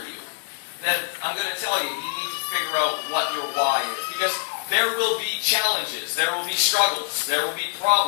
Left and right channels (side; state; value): right; silent; digital silence